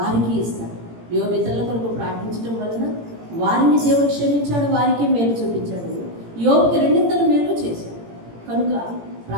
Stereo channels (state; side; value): late; left; 17 ms